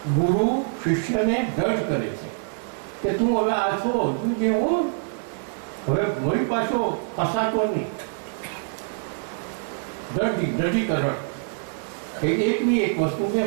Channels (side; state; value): left; silent; 60 dB below the other